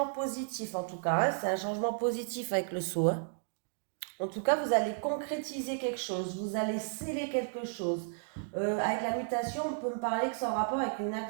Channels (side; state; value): left; silent; digital silence